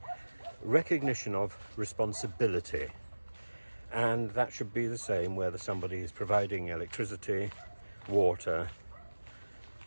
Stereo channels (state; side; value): inverted; both; correlation -1.00